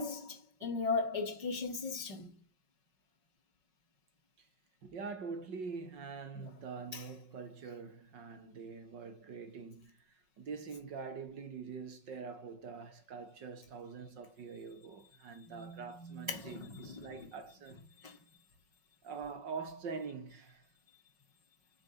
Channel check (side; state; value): left; late; 5.5 ms